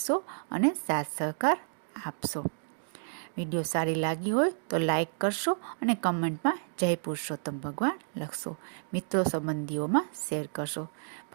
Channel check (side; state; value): left; silent; digital silence